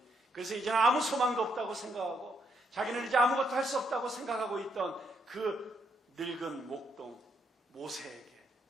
그래서 이제는 아무 소망도 없다고 생각하고 자기는 이제 아무것도 할 수 없다고 생각하고 있던 그 늙은 목동 모세에게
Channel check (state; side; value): normal; both; correlation 0.75